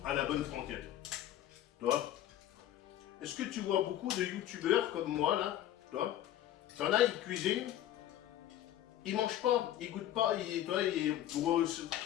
à la bonne franquette. Toi, est-ce que tu vois beaucoup de youtubeurs comme moi là? Toi, t'en as, ils cuisinent, ils mangent pas, ils goûtent pas, ils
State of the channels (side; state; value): right; quieter; 12.2 dB